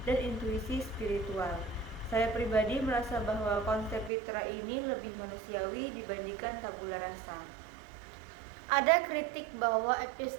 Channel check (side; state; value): left; drops out; at 4.1 s